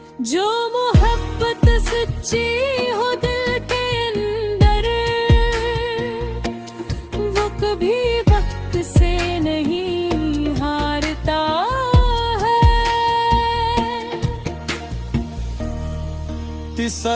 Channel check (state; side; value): identical; both; correlation 1.00